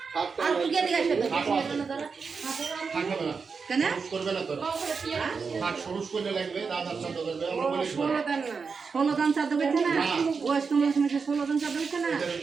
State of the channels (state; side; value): quieter; left; 5.2 dB